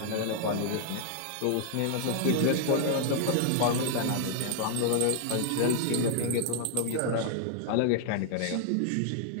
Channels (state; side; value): different; both; correlation 0.00